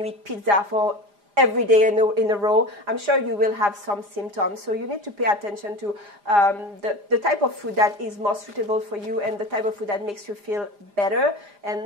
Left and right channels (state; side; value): late; left; 4.9 ms